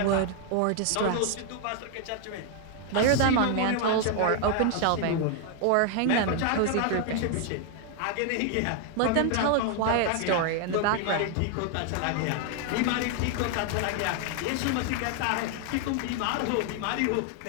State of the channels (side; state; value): both; different; correlation 0.00